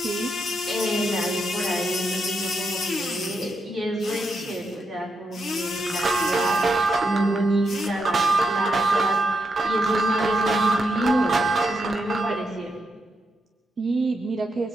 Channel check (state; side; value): normal; both; correlation 0.83